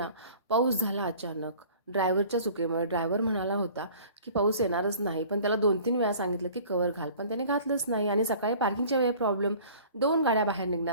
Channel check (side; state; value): both; inverted; correlation -0.48